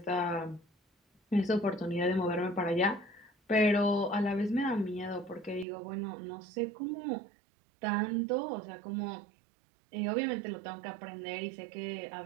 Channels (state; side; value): drops out; left; at 5.7 s